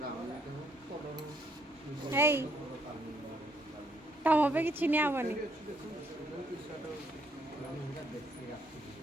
हे तम पे किसी नहीं आवनी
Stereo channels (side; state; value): both; normal; correlation 0.71